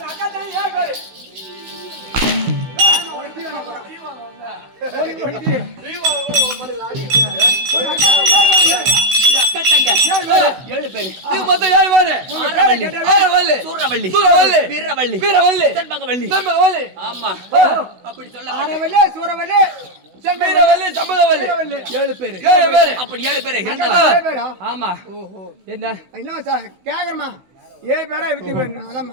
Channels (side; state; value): left; late; 16 ms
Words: காட்டடா 7 பேர். ஏழு பேரு. மொத்தம் 7 பேரு. ஆரவள்ளி, ஆரவள்ளி, சூரவள்ளி, சூரவள்ளி, வீரவள்ளி, வீரவள்ளி, செண்பகவள்ளி. செண்பகவள்ளி. ஆமா, அப்படி சொல்லப்பட்ட ஆரவள்ளி, சூரவள்ளி, வீரவள்ளி, செண்பகவள்ளி. 7 பேரு. 7 பேரு. அப்படி 7 பேரு இருந்தாலும். பேரா? ஆமா. என்ன என்ன சார் கேக்குறமா? 7 பேரா வித்து